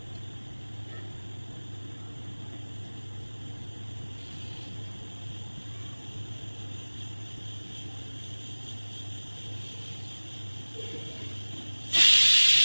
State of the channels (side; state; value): both; inverted; correlation -1.00